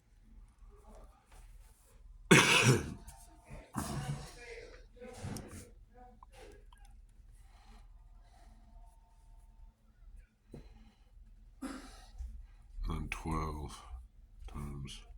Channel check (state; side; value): identical; both; correlation 1.00